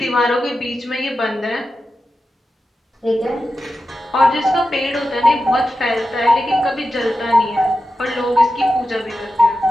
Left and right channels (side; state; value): both; normal; correlation 0.91